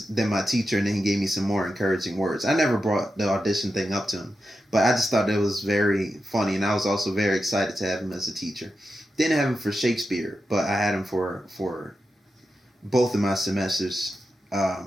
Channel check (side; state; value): both; normal; correlation 0.89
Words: then my teacher, and then he gave me some more encouraging words. I never brought the audition thing up to him, but I just thought it was very funny, and I was also very excited to have him as a teacher. Didn't have him for Shakespeare, but I had him for both of my semesters